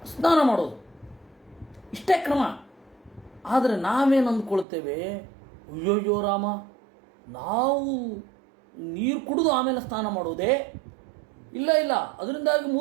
ಸ್ನಾನ ಮಾಡೋದು ಇಷ್ಟೇ ಕ್ರಮ. ಆದರೆ ನಾವೇನು ಅಂದ್ಕೊಳ್ತೇವೆ, ಅಯ್ಯೋಯ್ಯೋ ರಾಮ, ನಾವು ನೀರು ಕುಡಿದು ಆಮೇಲೆ ಸ್ನಾನ ಮಾಡೋದೇ? ಇಲ್ಲ, ಅದರಿಂದಾಗಿ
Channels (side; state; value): left; drops out; at 4.7 s